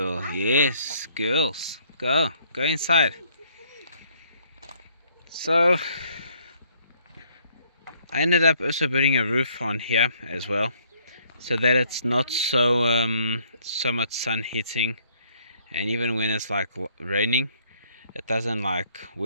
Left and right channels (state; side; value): inverted; both; correlation -0.65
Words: Yes, girls. Go inside. So I ended up also putting a roof on here as well, so that it's not so much sun hitting, and even when it's like raining, it doesn't like